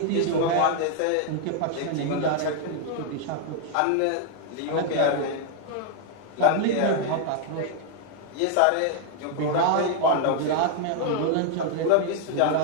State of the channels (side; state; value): both; different; correlation 0.00